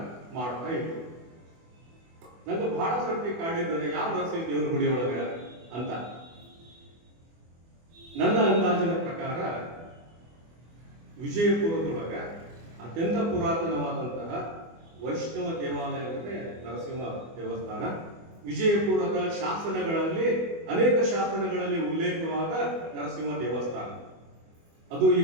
ಮಾಡ್ತಾ ಇದ್ರು. ನಂಗೆ ಬಹಳ ಸರ್ತಿ ಕಾಡಿದ್ದಾರೆ, ಯಾವ ನರಸಿಂಹ ದೇವರ ಗುಡಿ ಒಳಗ ಅಂತ. ನನ್ನ ಅಂದಾಜಿನ ಪ್ರಕಾರ ವಿಜಯಪುರದೊಳಗ ಅತ್ಯಂತ ಪುರಾತನವಾದಂತಹ ವೈಷ್ಣವ ದೇವಾಲಯ ಅಂದ್ರೆ ನರಸಿಂಹ ದೇವಸ್ಥಾನ. ವಿಜಯಪುರದ ಶಾಸನಗಳಲ್ಲಿ, ಅನೇಕ ಶಾಸನಗಳಲ್ಲಿ ಉಲ್ಲೇಖವಾದ ನರಸಿಂಹ ದೇವಸ್ಥಾನ. ಅದು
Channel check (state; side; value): late; left; 24 ms